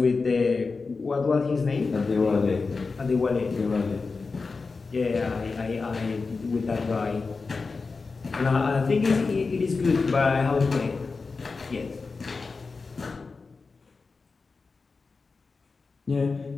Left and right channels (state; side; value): quieter; right; 4.3 dB